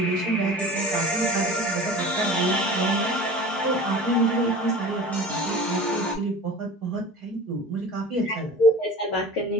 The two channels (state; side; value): normal; both; correlation 0.38